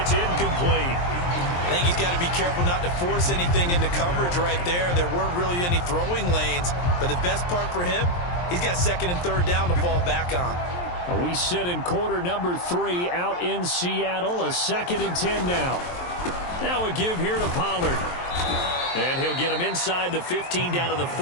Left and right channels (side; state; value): right; late; 23 ms